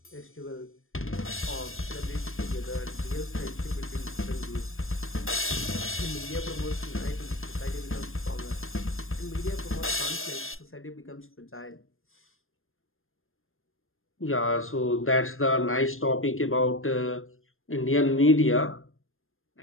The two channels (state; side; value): late; right; 0.60 ms